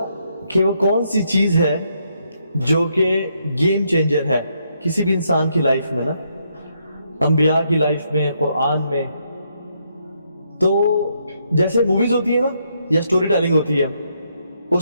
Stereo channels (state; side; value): inverted; both; correlation -0.76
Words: کہ وہ کون سی چیز ہے جو کہ گیم چینجر ہے کسی بھی انسان کی لائف میں نا, انبیاء کی لائف میں, قرآن میں. تو جیسے موویز ہوتی ہیں نا یا سٹوری ٹیلنگ ہوتی ہے,